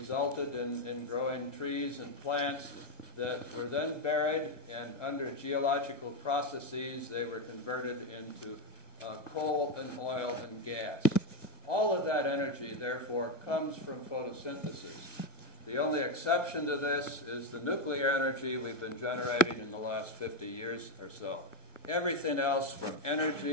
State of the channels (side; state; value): right; late; 1.1 ms